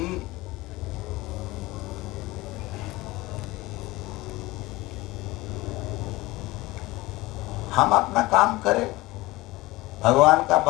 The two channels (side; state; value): right; quieter; 20.2 dB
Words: हम अपना काम करें, भगवान का